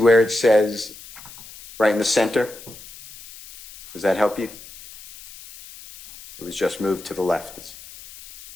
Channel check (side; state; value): left; noise; hiss, 18 dB below the sound